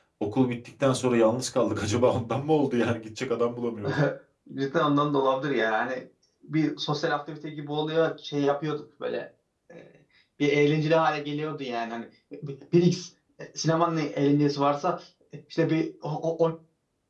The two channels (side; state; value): both; identical; correlation 1.00